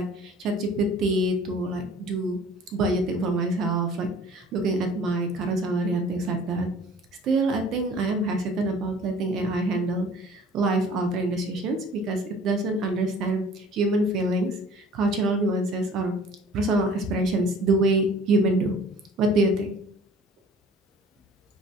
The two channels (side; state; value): both; normal; correlation 0.50